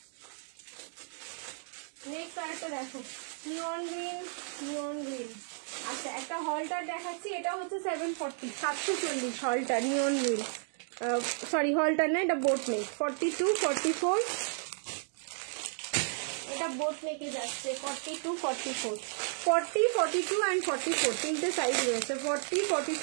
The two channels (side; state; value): left; silent; 56 dB below the other